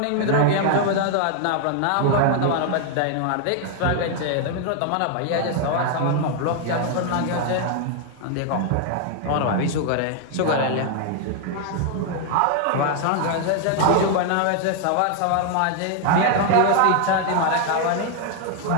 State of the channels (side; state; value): both; different; correlation 0.00